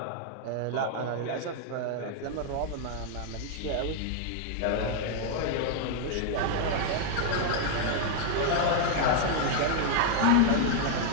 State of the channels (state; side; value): different; both; correlation 0.00